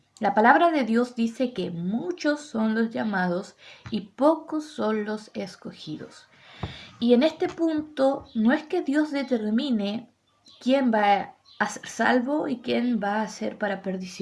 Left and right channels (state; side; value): identical; both; correlation 1.00